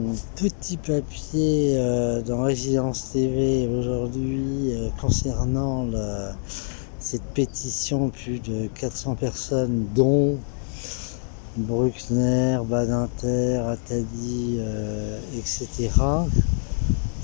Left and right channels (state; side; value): silent; right; digital silence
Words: petit papier dans Résidence TV aujourd'hui concernant cette pétition, plus de 400 personnes, dont Bruckner, Badinter, Attali, etc.